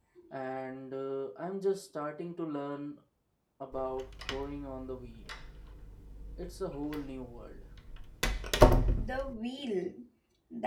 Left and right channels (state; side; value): identical; both; correlation 1.00